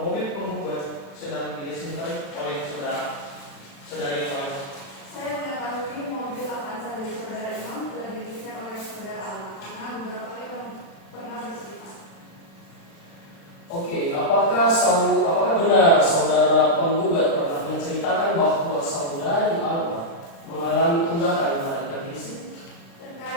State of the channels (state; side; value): late; right; 36 ms